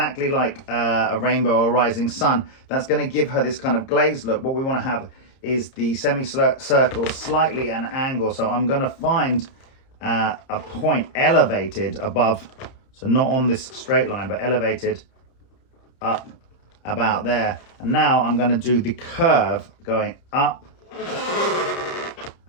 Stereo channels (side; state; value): right; late; 30 ms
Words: like a rainbow or a rising sun, that's going to give her this kind of glazed look. What we want to have is the semicircle slightly an angle. So I'm going to find a point elevated above, so not on this straight line, but elevated up about there. And now I'm going to do the curve going up